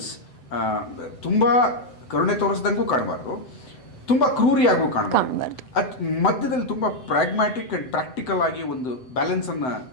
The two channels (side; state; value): right; late; 7.9 ms